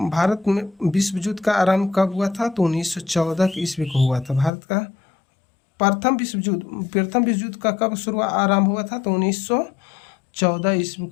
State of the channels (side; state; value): right; drops out; at 4.5 s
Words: भारत में विश्व युद्ध का आरंभ कब हुआ था? तो 1914 ईस्वी को हुआ था। भारत का प्रथम विश्व युद्ध का कब आरंभ हुआ था? तो 1914 ईस्वी